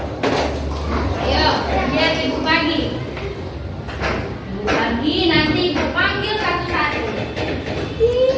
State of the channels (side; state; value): both; identical; correlation 1.00